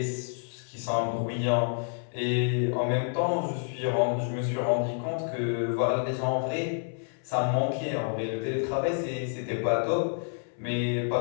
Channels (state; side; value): silent; right; 56 dB below the other